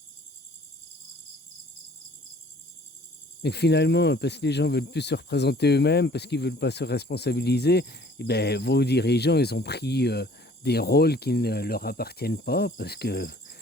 Et finalement, parce que les gens veulent plus se représenter eux-mêmes, parce qu'ils veulent pas se responsabiliser, eh ben, vos dirigeants, ils ont pris des rôles qui ne leur appartiennent pas, parce que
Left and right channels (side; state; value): both; normal; correlation 0.54